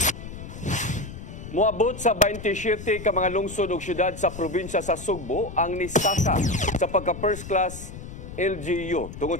Moabot sa 27 ka mga lungsod ug syudad sa probinsya sa Sugbo ang nisaka sa pagka first class LGU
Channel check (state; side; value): noise; left; rumble, 11 dB below the sound